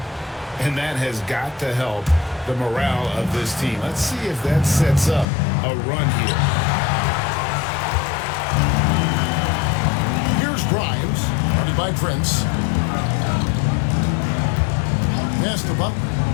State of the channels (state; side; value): drops out; right; at 5.2 s